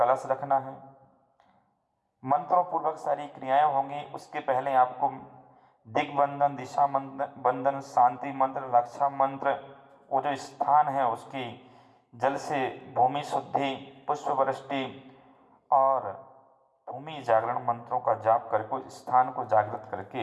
रखना है। मंत्रों पूर्वक सारी क्रियाएं होंगी। उसके पहले आपको दिग्बंधन, दिशा बंधन, शांति मंत्र, रक्षा मंत्र, वो जो स्थान है उसकी जल से भूमि शुद्धि, पुष्प वृष्टि और भूमि जागरण मंत्रों का जाप करके उस स्थान को जागृत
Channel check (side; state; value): both; identical; correlation 1.00